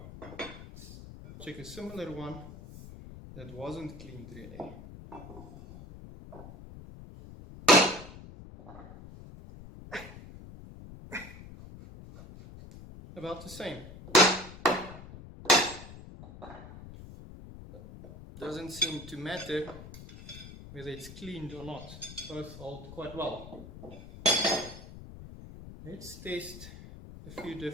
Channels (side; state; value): left; noise; rumble, 14 dB below the sound